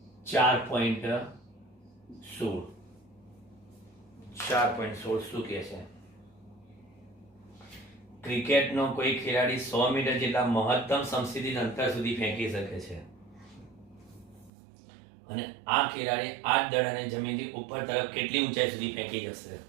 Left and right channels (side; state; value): left; drops out; at 14.5 s